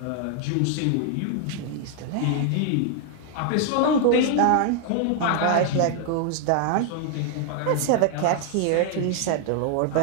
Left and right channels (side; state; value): both; different; correlation 0.00